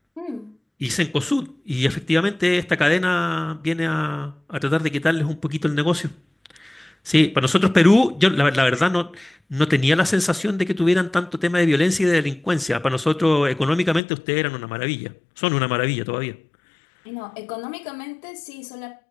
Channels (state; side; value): drops out; right; at 14.0 s